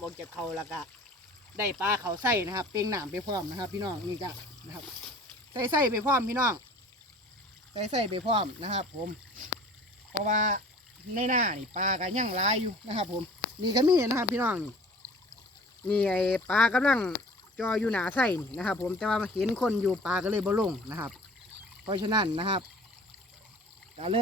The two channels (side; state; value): both; normal; correlation 0.46